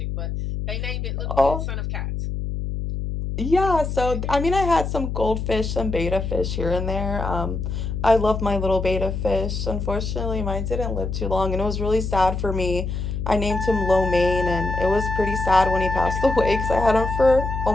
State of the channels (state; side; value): noise; left; hum, 3 dB below the sound